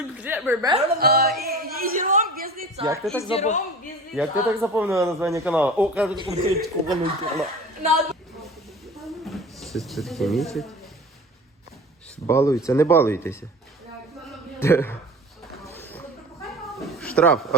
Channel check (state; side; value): normal; both; correlation 0.38